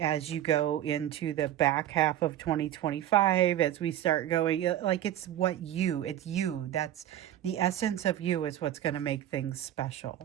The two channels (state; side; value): quieter; left; 12.0 dB